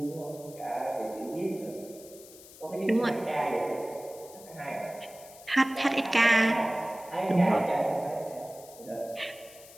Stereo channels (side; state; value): left; noise; hiss, 19 dB below the sound